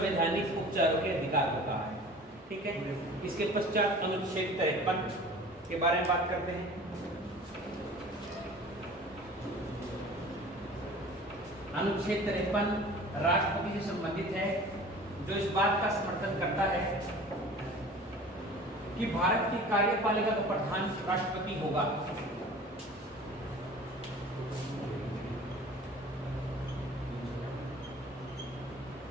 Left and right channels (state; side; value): normal; both; correlation 0.43